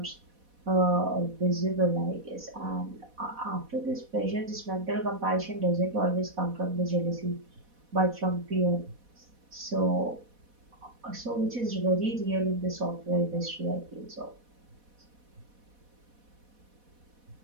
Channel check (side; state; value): left; late; 4.1 ms